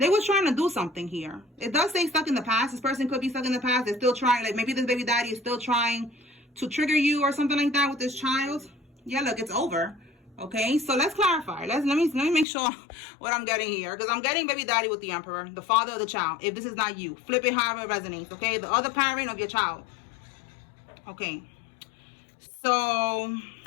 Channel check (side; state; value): right; drops out; at 12.5 s